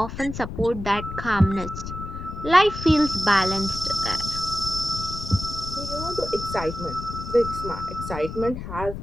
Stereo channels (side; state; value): left; noise; rumble, 8 dB below the sound